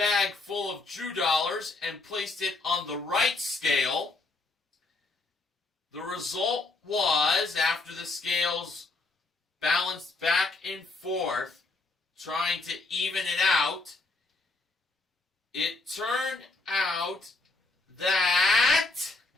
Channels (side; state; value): right; quieter; 3.4 dB